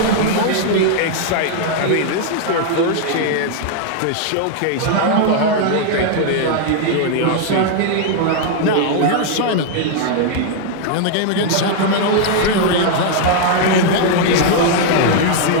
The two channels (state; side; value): different; both; correlation 0.00